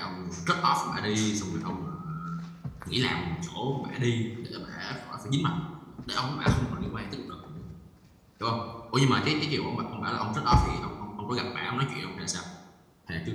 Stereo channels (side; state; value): both; identical; correlation 1.00